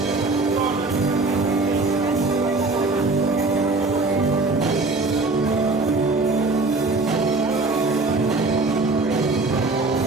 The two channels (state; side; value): quieter; left; 3.4 dB